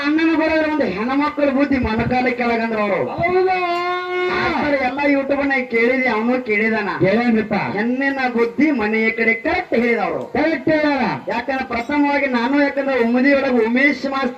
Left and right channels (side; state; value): both; identical; correlation 1.00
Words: ಅಣ್ಣನ ಬರೋದ್ರ ಒಂದು ಹೆಣ್ಮಕ್ಳ ಬುದ್ಧಿ ಮೊಣಕಾಲ ಕೆಳಗಂದ್ರ ಅವರು ಎಲ್ಲ ಯೂಟ್ಯೂಬ್ನ ಕೇಳಿದೆ ಅವನು ಕೇಳಿದಾನ ಹೆಣ್ಣಿನ ಬುದ್ಧಿ ಮನೆಯ ಕಡೆ ಕರೆಕ್ಟ್ ಹೇಳಿದವರು ಕರೆಕ್ಟ್ ಹೇಳ ಯಾಕಂದ್ರೆ ಪ್ರಥಮವಾಗಿ ನಾನು ಯಾಕಂದ್ರೆ ಉಮ್ಮದಿಯೊಳಗೆ ಉಮೇಶ್